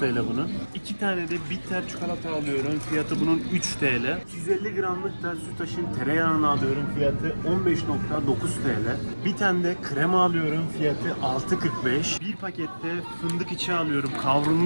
bunun. 2 tane de bitter çikolata alıyorum. Fiyatı bunun 3 TL. 250 gramlık da Sütaş'ın tereyağını alıyorum. Fiyatı 15,9 TL. Bir tane de krema alıyorum. Fiyatı 6,45. Bir pakette fındık içi alıyorum.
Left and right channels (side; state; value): both; inverted; correlation -1.00